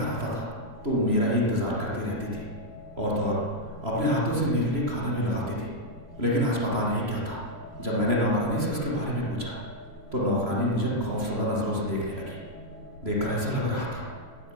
आता था तो मेरा ही इंतज़ार करती रहती थी और तो और अपने हाथों से मेरे लिए खाना भी लगाती थी। लेकिन आज पता नहीं क्या था, जब मैंने नौकरानी से उसके बारे में पूछा तो नौकरानी मुझे खौफजदा नज़रों से देखने लगी। देखकर ऐसा लग रहा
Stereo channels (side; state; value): left; late; 3.0 ms